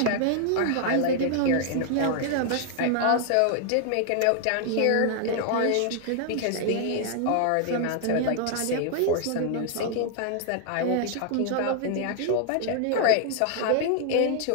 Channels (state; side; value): different; both; correlation 0.00